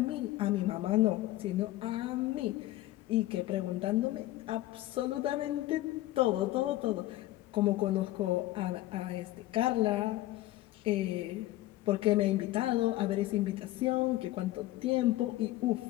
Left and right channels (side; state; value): right; quieter; 16.3 dB